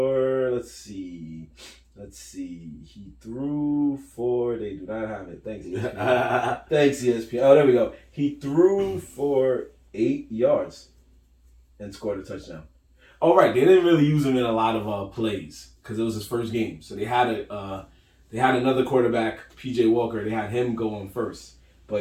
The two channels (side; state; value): both; identical; correlation 1.00